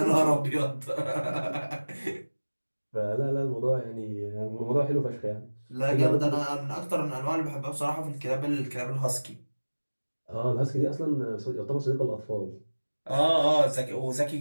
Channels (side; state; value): both; inverted; correlation -1.00